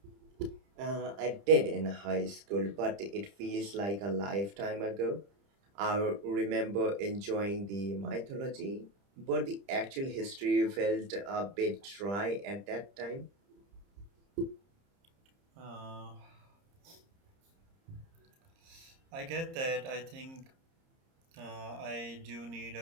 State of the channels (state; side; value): late; left; 30 ms